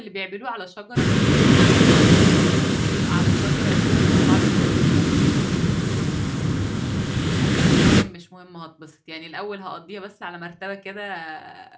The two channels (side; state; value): both; identical; correlation 1.00